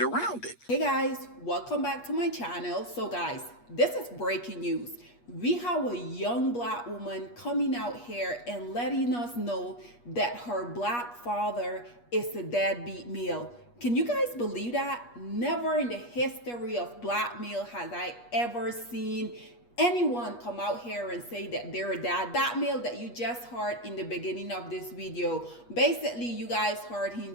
it. Hey guys, welcome back to my channel. So guys, this is breaking news. We have a young black woman coming out here and letting us know that her black father is a deadbeat male. Can you guys believe that? Never in the history of black male has I ever seen anyone come out here and say that they're a dad. That male that you just heard in the beginning of this video, basically you guys heard him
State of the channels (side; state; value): right; late; 8.4 ms